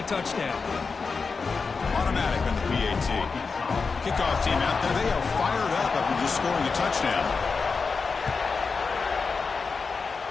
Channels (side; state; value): right; quieter; 4.8 dB